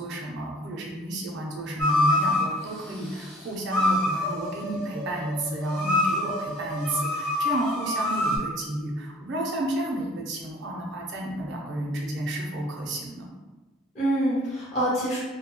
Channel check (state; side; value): normal; both; correlation 0.51